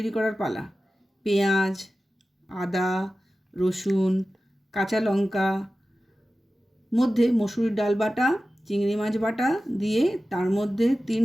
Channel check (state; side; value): normal; both; correlation 0.95